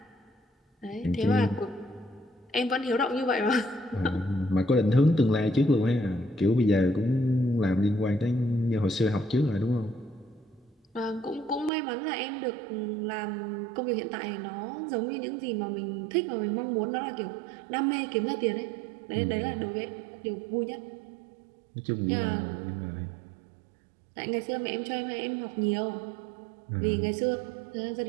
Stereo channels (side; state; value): left; drops out; at 11.7 s